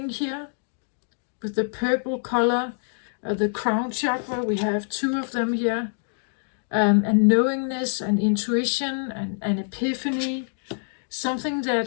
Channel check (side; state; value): right; silent; digital silence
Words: here. With the purple color, the crown chakra, we have two of them here, and knowingness and intuition and epiphany, something that